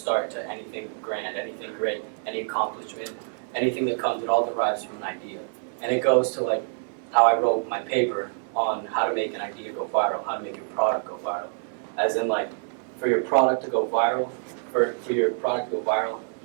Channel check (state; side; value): silent; left; digital silence